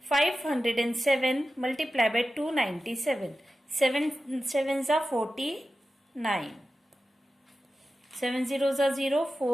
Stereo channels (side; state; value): both; normal; correlation 0.93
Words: 507 multiplied by 297. 7 sevens are 49. 7 zeros are 0.